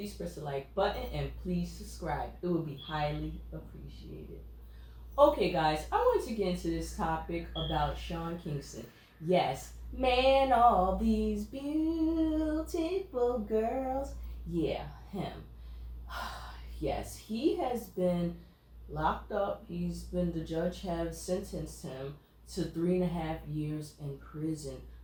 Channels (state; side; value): identical; both; correlation 1.00